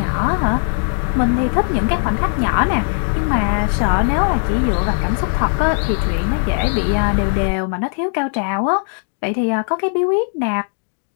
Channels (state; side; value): silent; right; 57 dB below the other